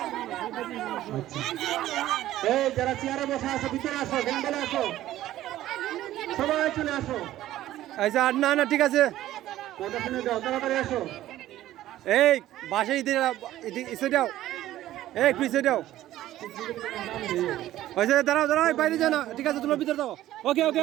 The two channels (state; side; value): quieter; left; 14.1 dB